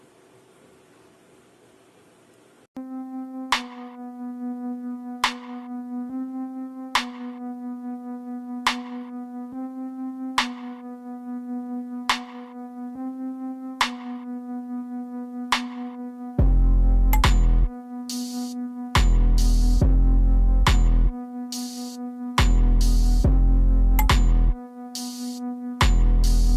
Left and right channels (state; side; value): identical; both; correlation 1.00